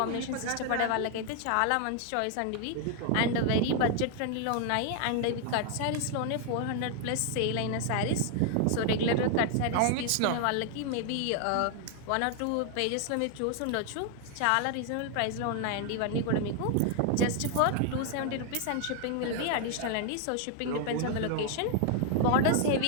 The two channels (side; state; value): both; different; correlation 0.00